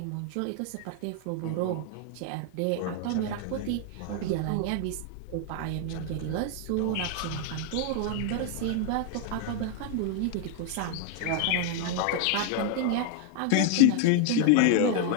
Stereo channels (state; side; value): different; both; correlation 0.00